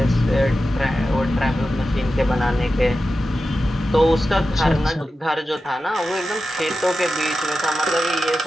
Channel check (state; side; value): normal; both; correlation 0.92